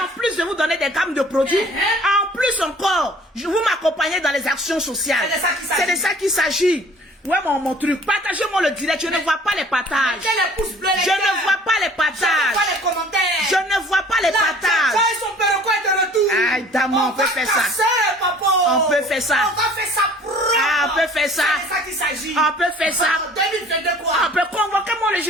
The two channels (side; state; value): both; normal; correlation 0.51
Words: en plus de vous donner des gammes de produits, en plus encore, vous m'accompagnez dans les actions sociales. C'est de ça qu'il s'agit. Ouais, mon truc. Partagez-moi le direct. Je ne vois pas les partages. Je ne vois pas les partages. Je ne vois pas les partages. Aïe, dame, on peut faire ça. On peut faire ça. On peut faire ça. On peut faire ça. On peut convoquer le